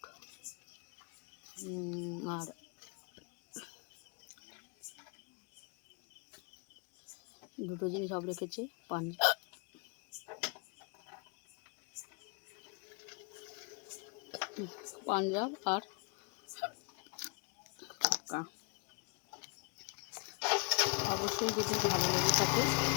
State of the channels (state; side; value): quieter; right; 32.6 dB